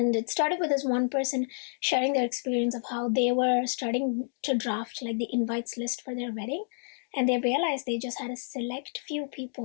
it started with this one person sharing their experience of how they were starting to draft like the invites list for their wedding. And they realized they just had a select few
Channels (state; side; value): silent; right; digital silence